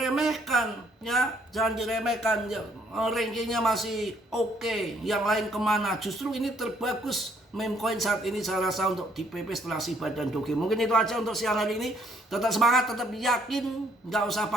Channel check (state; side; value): normal; both; correlation 0.66